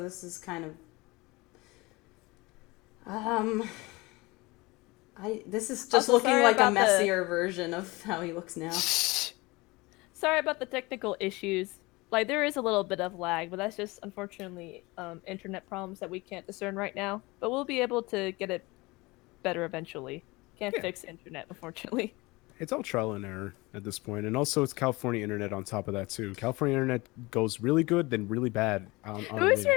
this is kind of. This is just Also, looking sorry like a about the- messier version of how he looks now. Sorry about the technical issues. Like, there is a little bit of lag, but that's just, unfortunately, internet problems that we can't discern right now. But we'll be able to get it better eventually. Can't Yeah. fix internet, unfortunately. It's all trial and error at this point, and also it's California internet on top of that too. California internet goes really good, then really bad. On Who is a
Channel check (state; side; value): quieter; right; 23.1 dB